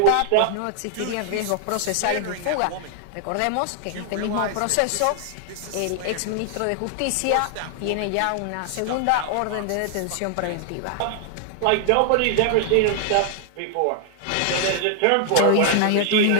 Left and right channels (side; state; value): both; different; correlation 0.00